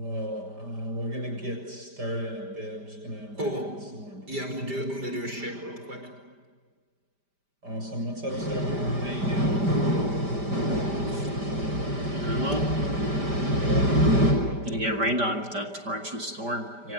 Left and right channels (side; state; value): left; late; 5.0 ms